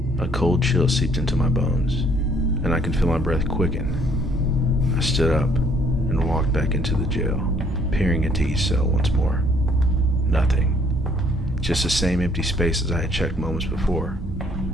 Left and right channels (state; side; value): normal; both; correlation 0.63